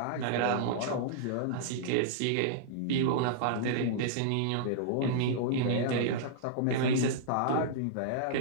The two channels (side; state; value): both; different; correlation -0.02